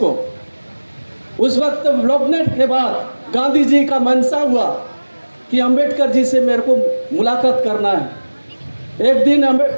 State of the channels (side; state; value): both; inverted; correlation -1.00